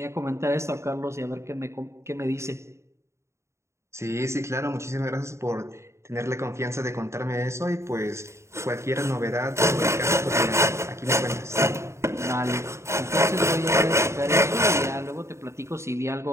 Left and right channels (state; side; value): late; left; 0.14 ms